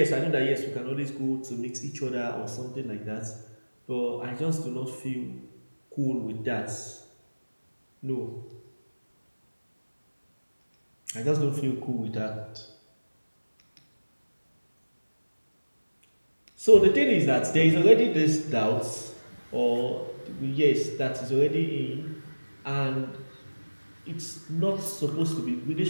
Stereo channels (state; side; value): inverted; both; correlation -1.00